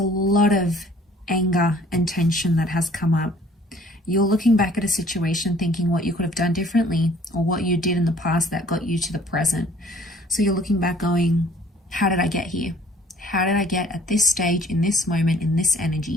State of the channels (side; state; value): both; normal; correlation 0.56